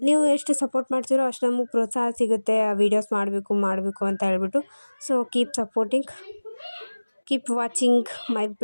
ನೀವು ಎಷ್ಟು ಸಪೋರ್ಟ್ ಮಾಡ್ತೀರೋ ಅಷ್ಟು ನಮಗೆ ಪ್ರೋತ್ಸಾಹ ಸಿಗುತ್ತೆ ವೀಡಿಯೋಸ್ ಮಾಡಬೇಕು ಅಂತ ಹೇಳ್ಬಿಟ್ಟು. So keep supporting, keep watching my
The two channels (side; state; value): both; inverted; correlation -1.00